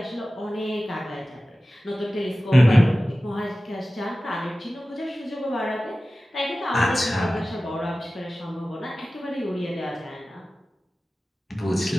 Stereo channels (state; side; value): normal; both; correlation 0.96